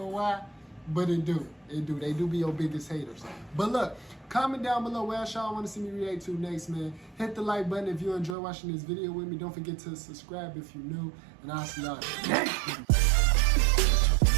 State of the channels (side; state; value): left; drops out; at 8.3 s